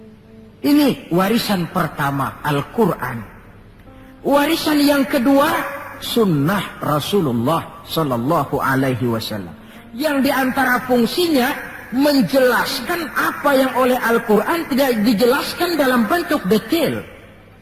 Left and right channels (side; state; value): both; identical; correlation 1.00